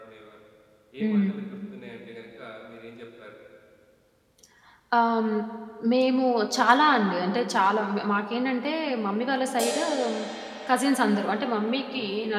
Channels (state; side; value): identical; both; correlation 1.00